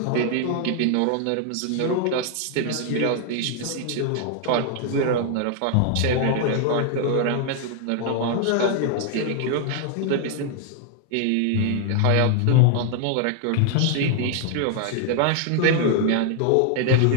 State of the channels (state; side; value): different; both; correlation 0.00